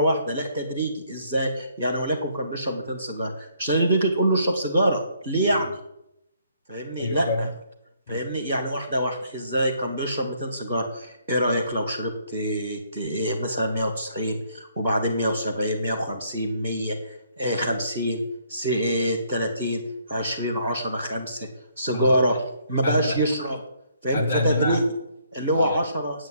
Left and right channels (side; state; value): both; inverted; correlation -0.67